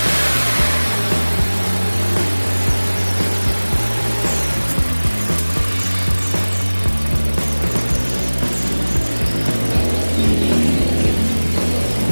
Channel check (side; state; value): both; inverted; correlation -1.00